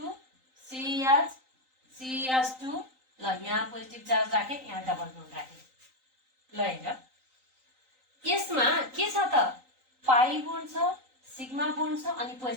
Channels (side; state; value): left; late; 3.9 ms